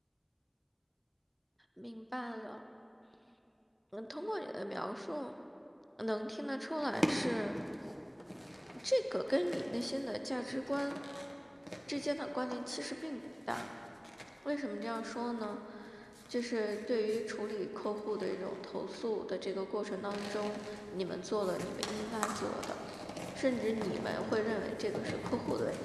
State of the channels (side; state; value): both; identical; correlation 1.00